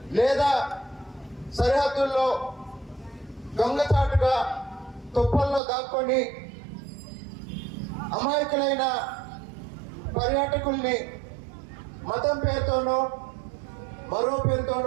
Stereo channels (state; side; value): drops out; left; at 5.6 s